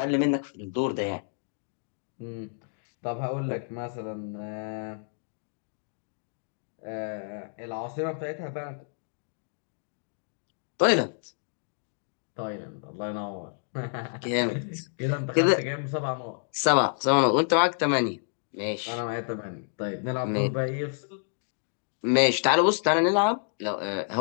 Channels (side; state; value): right; silent; digital silence